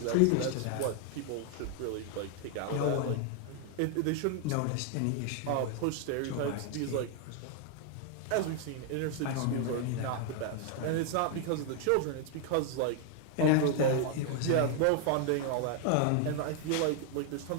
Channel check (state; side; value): different; both; correlation 0.00